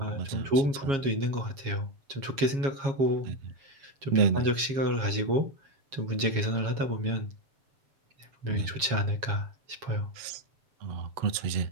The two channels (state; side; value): late; left; 7.3 ms